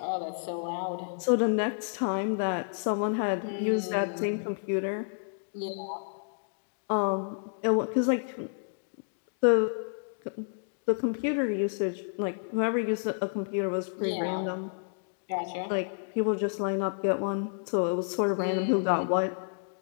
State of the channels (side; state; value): right; silent; digital silence